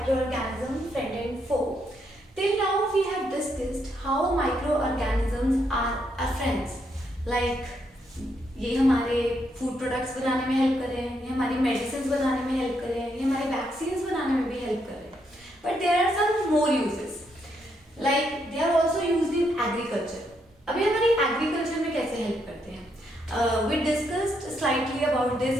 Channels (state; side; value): normal; both; correlation 0.77